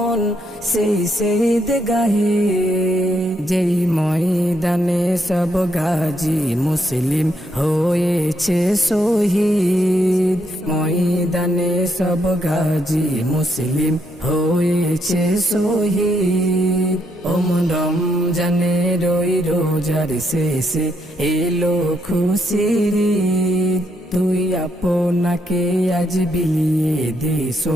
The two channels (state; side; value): normal; both; correlation 0.76